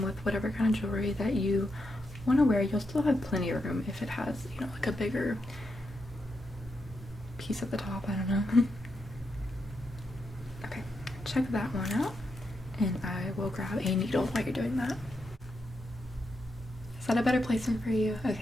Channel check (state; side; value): normal; both; correlation 0.84